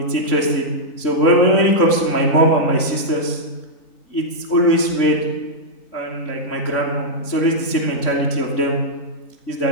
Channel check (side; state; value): right; late; 3.6 ms